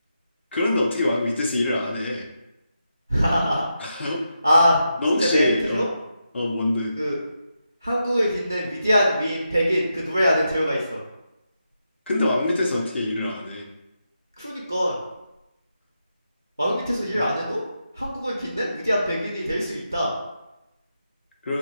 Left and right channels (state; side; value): inverted; both; correlation -0.85